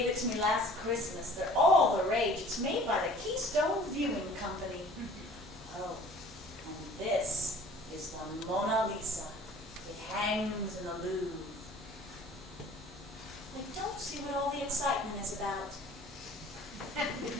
it to me last Christmas. They're all the rage. It's made by the Keystone Viewing Company. Oh, and this is the Mona Lisa. It hangs in the Louvre. I don't see what all the excitement is about.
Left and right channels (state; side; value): normal; both; correlation 0.49